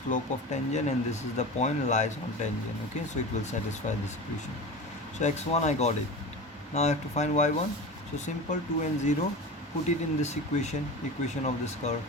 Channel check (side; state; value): both; normal; correlation 0.30